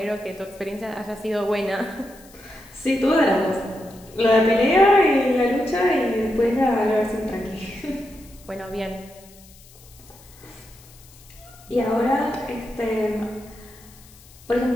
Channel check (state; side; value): noise; left; hiss, 24 dB below the sound